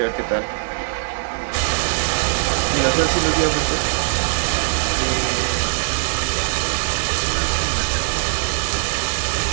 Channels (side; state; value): left; silent; 65 dB below the other